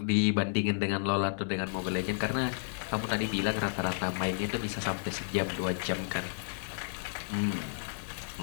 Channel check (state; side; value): silent; right; digital silence